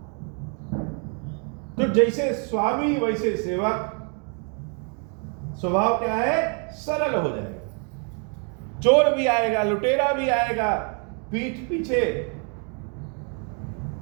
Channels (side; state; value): left; quieter; 39.6 dB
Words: तो जैसे स्वामी वैसे सेवक, स्वभाव क्या है? सरल हो जाएगा। चोर भी आएगा, लुटेरा भी आएगा, पीठ पीछे